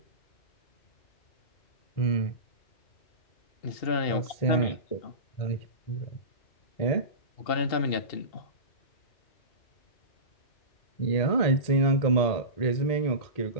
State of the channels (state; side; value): late; right; 2.7 ms